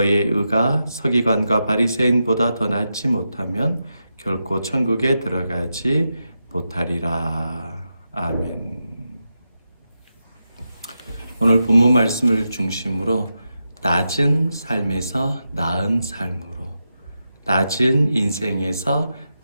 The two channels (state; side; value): inverted; both; correlation -0.88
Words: 의가 서기관과 바리새인보다 더 낫지 못하면 결코 천국에 들어가지 못하리라. 아멘. 오늘 본문 말씀을 중심으로 낮은 삶에서 나은 삶으로, 낮은 인생에서